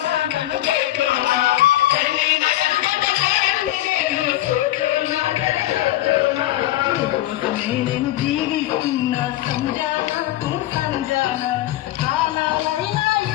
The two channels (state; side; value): quieter; right; 15.2 dB